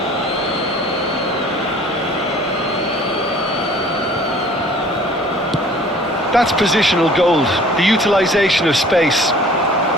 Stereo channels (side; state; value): both; normal; correlation 0.50